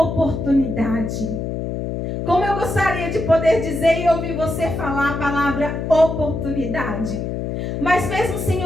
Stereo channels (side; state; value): left; noise; hum, 4 dB below the sound